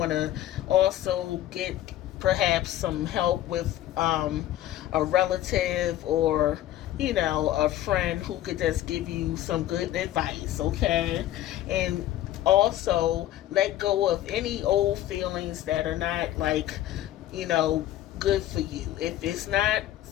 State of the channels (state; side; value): quieter; right; 13.4 dB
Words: to also get perhaps some help with a relative or a friend who could just give you some good advice, okay? And also let go of any old feelings that are not good for you. If it's not